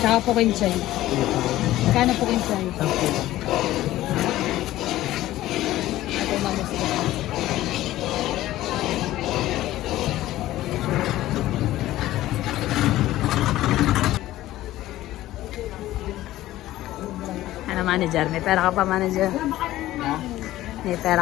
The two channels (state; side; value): quieter; right; 15.2 dB